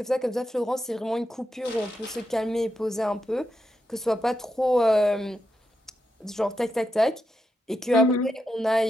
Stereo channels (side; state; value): both; normal; correlation 0.85